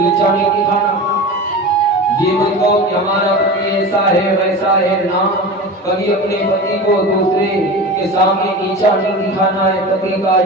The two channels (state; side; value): normal; both; correlation 0.30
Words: नहीं दिखाना। ये मत कहो कि हमारा पति ऐसा है वैसा है, ना, कभी अपने पति को दूसरे के सामने नीचा नहीं दिखाना है, पति का